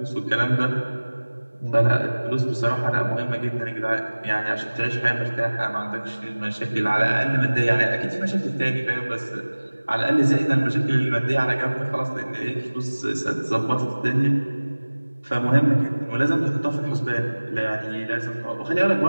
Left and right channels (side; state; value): both; inverted; correlation -1.00